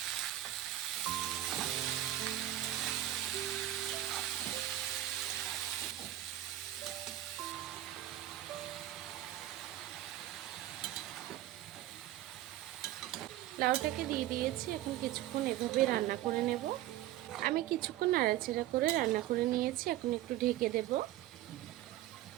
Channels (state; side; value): quieter; left; 14.1 dB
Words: লাউটাকে দিয়ে দিয়েছি, এখন কিছুক্ষণ এভাবে রান্না করে নেব। আমি কিছুক্ষণ নাড়াচাড়া করে রান্না করে নিয়েছি, এখন একটু ঢেকে দেব।